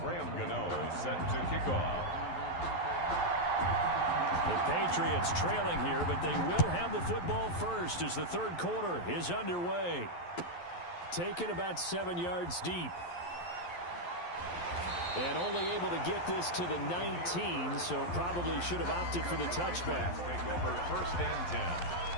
Gano set to kick off. The Patriots trailing here, but they will have the football first as the third quarter is underway. Taken about 7 yards deep. And only able to get this to the 19, so probably should have opted for the touchback. Take over 1st and 10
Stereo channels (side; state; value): right; late; 11 ms